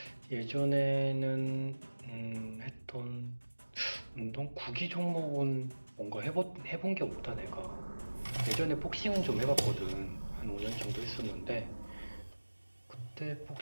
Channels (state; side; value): inverted; both; correlation -1.00